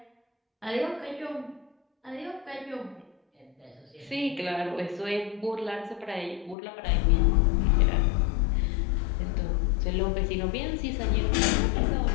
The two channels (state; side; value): drops out; right; at 6.6 s